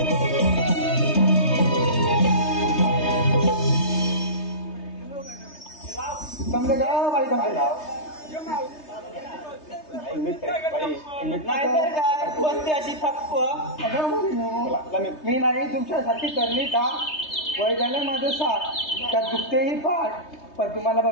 समजे का बाई समजे नाहीतर काय बसते अशी थप्प. मी नाही तुमच्यासाठी करली का? वय झालं माझं साथ, त्यात दुखतेही पाठ, पण तुम्हाला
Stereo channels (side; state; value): right; late; 3.3 ms